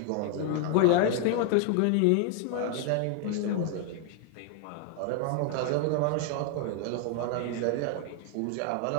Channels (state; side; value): different; both; correlation 0.00